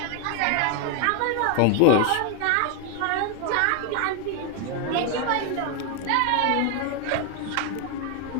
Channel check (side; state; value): both; different; correlation 0.01